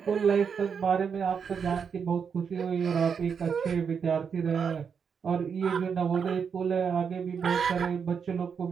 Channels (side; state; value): left; quieter; 6.6 dB